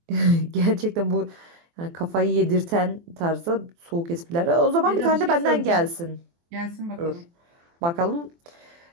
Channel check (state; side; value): late; left; 24 ms